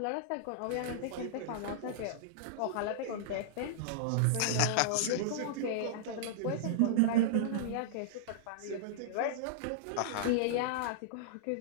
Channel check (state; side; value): different; both; correlation -0.02